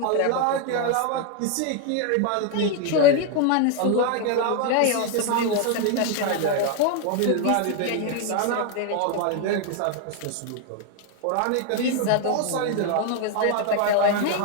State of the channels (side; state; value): both; different; correlation 0.01